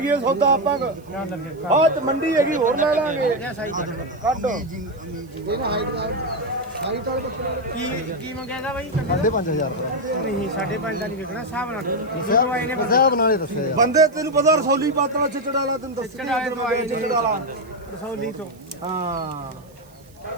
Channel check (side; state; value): right; noise; hiss, 29 dB below the sound